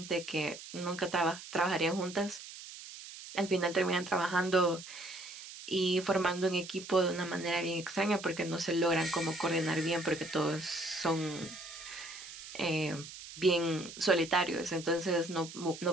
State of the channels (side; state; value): right; noise; hiss, 13 dB below the sound